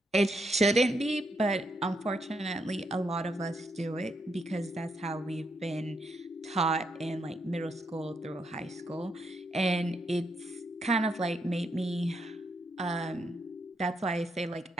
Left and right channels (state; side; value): normal; both; correlation 0.78